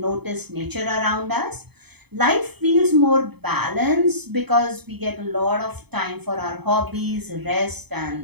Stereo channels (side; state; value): left; late; 0.98 ms